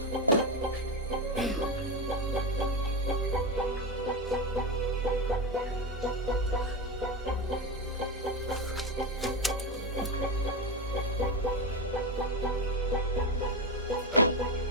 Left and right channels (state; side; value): normal; both; correlation 0.15